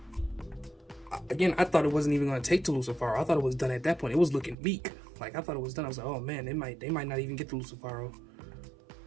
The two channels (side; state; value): left; drops out; at 4.5 s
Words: Again, I thought it wasn't even going to take to Lucifaro. I thought it was done at that point. It was looking weak. Like, I thought it was done. I was like, oh man, they might not even get to Lucifaro.